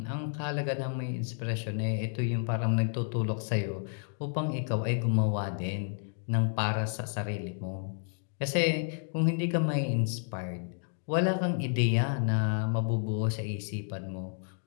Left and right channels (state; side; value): silent; right; 57 dB below the other